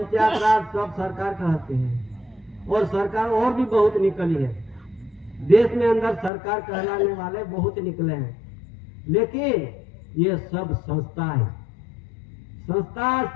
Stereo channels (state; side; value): drops out; right; at 6.3 s